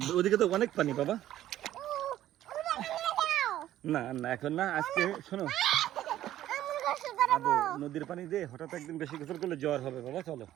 ওদিকে তো অনেক পানি বাবা। না না এখন না, আজকে শোনো নদীর পানি দিয়ে হঠাৎ একদিন বেশি গোসল করলে জ্বর হবে বাবা। চলো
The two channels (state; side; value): quieter; left; 13.0 dB